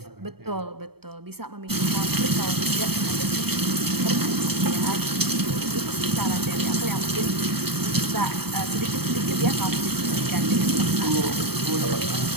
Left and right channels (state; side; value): late; left; 0.96 ms